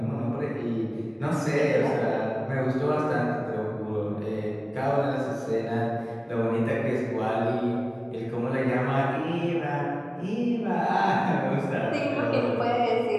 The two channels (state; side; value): identical; both; correlation 1.00